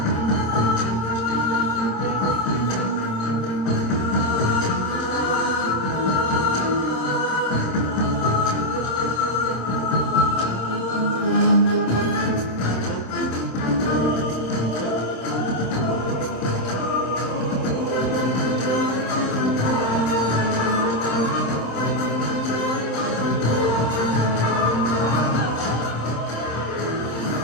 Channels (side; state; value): right; late; 26 ms